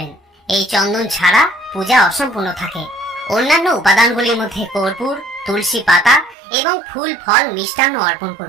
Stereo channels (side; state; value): left; drops out; at 6.4 s